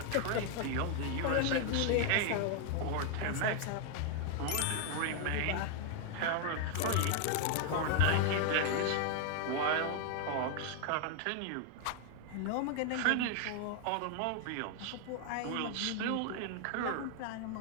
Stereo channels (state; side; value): different; both; correlation 0.00